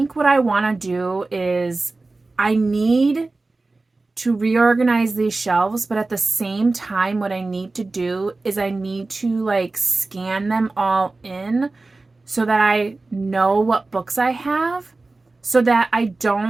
what I want to do is I need to reorganize these shelves, but at the same time, what I need to do is I need to like scan them all in so that I know what books I have, so that I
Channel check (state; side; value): quieter; left; 3.4 dB